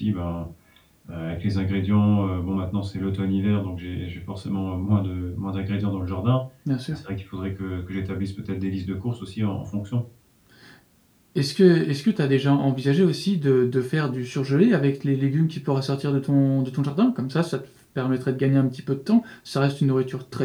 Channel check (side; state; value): both; identical; correlation 1.00